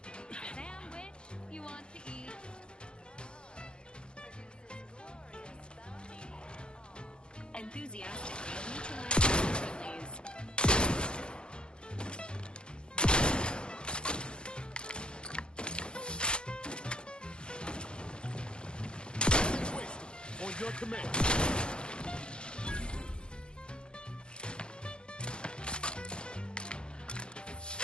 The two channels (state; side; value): late; right; 0.052 ms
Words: sandwich you want to eat. Enthusiastically neutralizing friendlies. On your command.